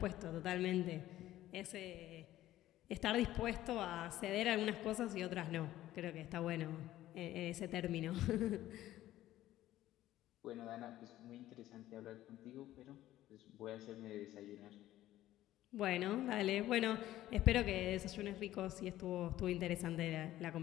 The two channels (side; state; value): right; quieter; 14.3 dB